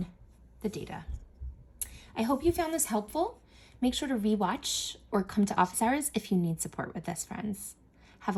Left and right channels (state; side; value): identical; both; correlation 1.00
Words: the data. I hope you found this helpful. Make sure to rewatch or come to office hours if you need support with this, friends. Have